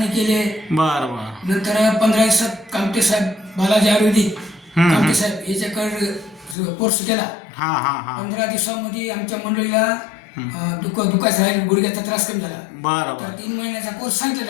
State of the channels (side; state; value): right; drops out; at 6.6 s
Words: केले. बरं बरं नंतर 15 दिवसात कामटे साहेब, बालाजी आयुर्वेदिक कामटे साहेब याच्याकडे कोर्स केला. हां हां हां 15 दिवसामध्ये आमच्या मंडळीला दुखायचं राहील, गुडघ्याचा त्रास कमी झाला. बरं तर बरं 3 महिन्याचा कोर्स सांगितलं